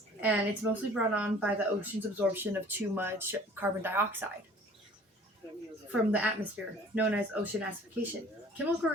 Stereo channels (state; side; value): normal; both; correlation 0.50